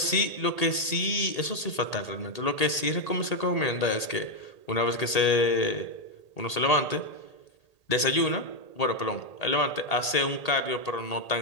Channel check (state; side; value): late; right; 1.8 ms